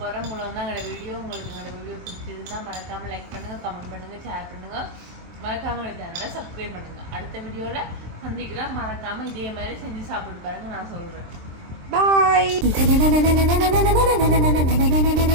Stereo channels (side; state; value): left; late; 23 ms